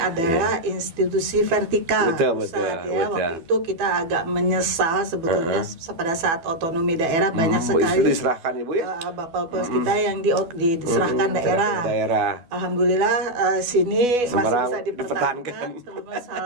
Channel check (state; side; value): late; left; 12 ms